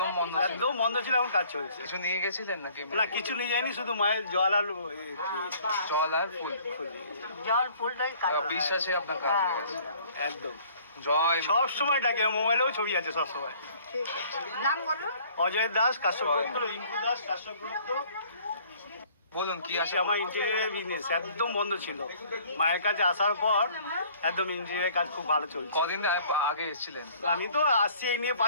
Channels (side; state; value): both; inverted; correlation -0.56